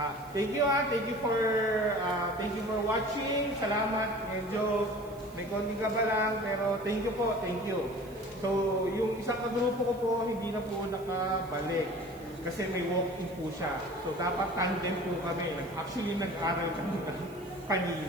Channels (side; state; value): right; noise; hiss, 24 dB below the sound